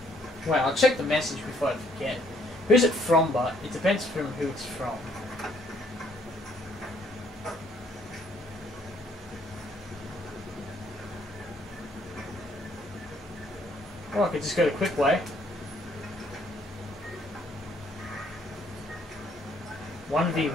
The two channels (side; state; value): both; normal; correlation 0.66